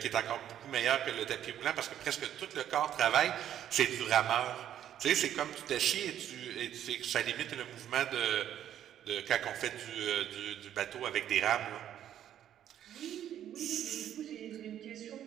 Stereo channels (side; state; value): left; quieter; 10.7 dB